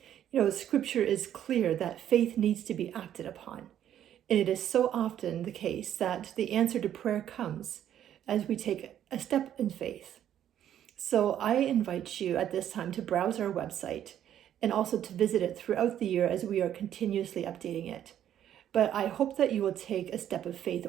Scripture is clear that faith needs to be acted upon. And it is so often the case that the answer to prayer comes as we take a step in faith. So I invite you at this time to browse our website and also to visit it throughout the year as we are continuously updating it. But I hope that you will take a step of faith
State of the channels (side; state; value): left; quieter; 10.7 dB